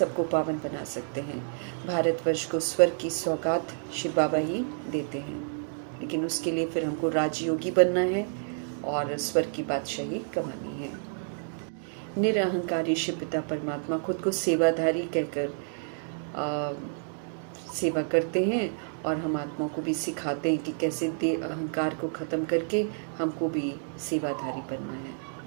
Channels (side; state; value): left; silent; digital silence